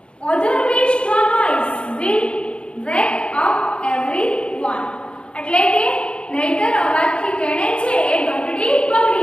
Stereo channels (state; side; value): late; right; 0.056 ms